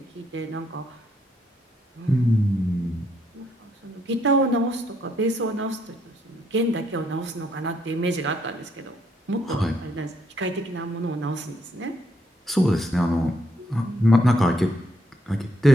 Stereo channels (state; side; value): normal; both; correlation 0.73